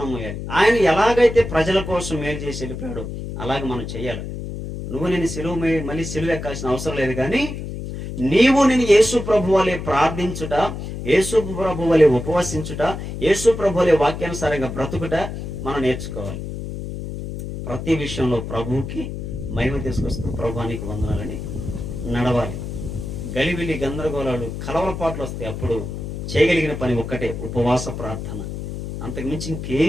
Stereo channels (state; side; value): noise; left; hum, 7 dB below the sound